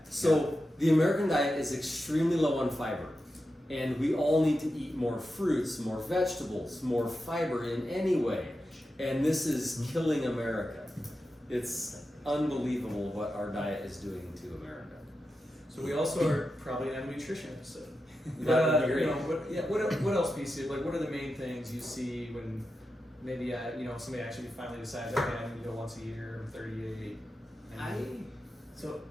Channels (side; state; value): both; normal; correlation 0.90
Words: So the American diet is extremely low on fiber. And we all need to eat more fruits, more vegetables, more fiber in any way. And this is killing America. It's unbelievable what our diet is doing to America. So we also are probably gonna have a nutrition episode. That would be great. What else, PC? Like, what are the main things you see when maybe somebody actually finally decides, okay, I need to go once a year, I'm 38.